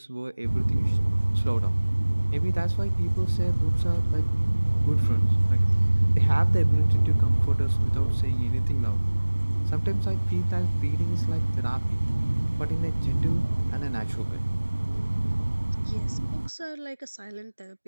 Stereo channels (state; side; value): inverted; both; correlation -1.00